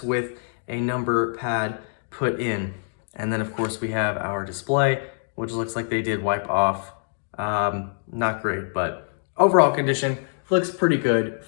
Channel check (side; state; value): right; silent; digital silence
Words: with a number pad put in. And then of course we have our display, which looks like they did wipe off. Not great, but overall condition looks pretty good